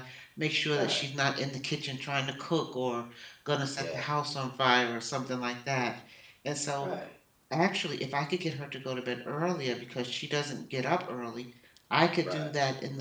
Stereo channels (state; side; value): identical; both; correlation 1.00